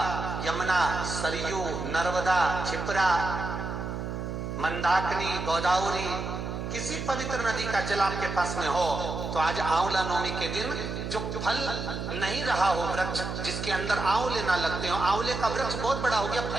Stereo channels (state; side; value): noise; right; hum, 5 dB below the sound